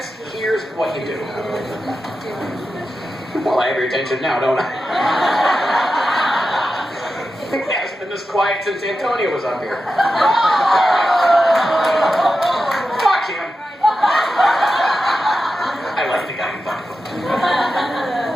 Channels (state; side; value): normal; both; correlation 0.91